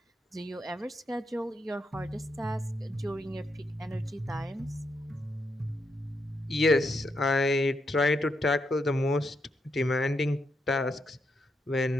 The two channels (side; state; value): both; normal; correlation 0.81